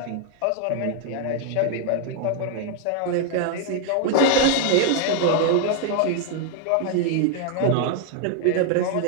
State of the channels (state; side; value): different; both; correlation 0.00